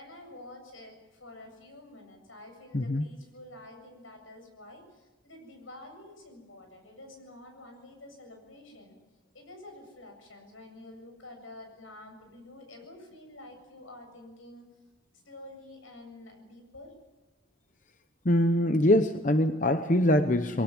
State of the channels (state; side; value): normal; both; correlation 0.59